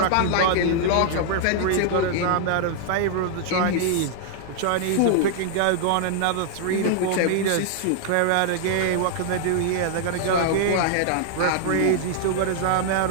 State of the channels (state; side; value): different; both; correlation -0.01